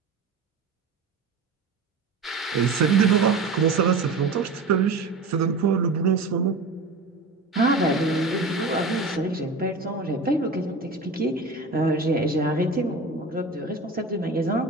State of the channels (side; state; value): left; quieter; 3.6 dB